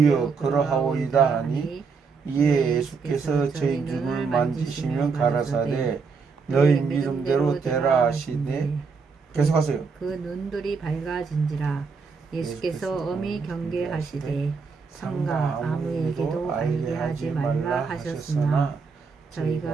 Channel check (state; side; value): quieter; left; 5.0 dB